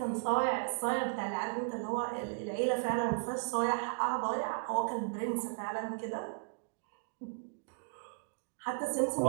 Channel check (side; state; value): left; silent; digital silence